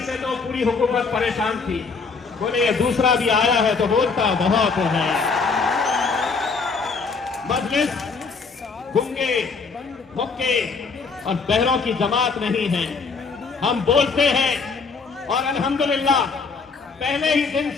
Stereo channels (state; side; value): quieter; right; 4.8 dB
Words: से तो पूरी हुकूमत परेशान थी। बोले ये दूसरा भी आया है तो बोलता बहुत है। मजलिस गूंगे, मुक्के और बहरों की जमात नहीं है। हम बोलते हैं और अल्हम्दुलिल्लाह पहले ही दिन